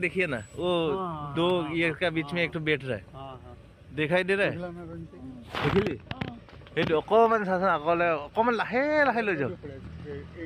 ना वो दो ये का बीच में एक तो बैठ रहा है दिखाई दे रहा है देखिली अकमान चाचोन अकले अकमान लाहे लाहे ले जाओ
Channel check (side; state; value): both; identical; correlation 1.00